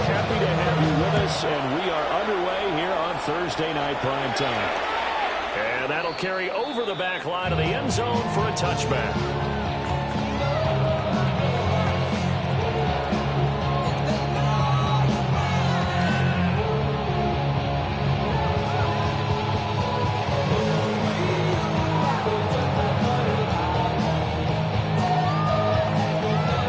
Happy to have you with us, and we are underway here on Thursday Night Prime Time. And that'll carry over the back line of the end zone for a touchback.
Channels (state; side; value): identical; both; correlation 1.00